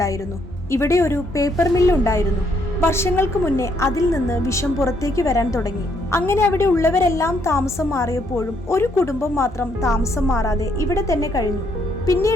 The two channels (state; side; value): normal; both; correlation 0.71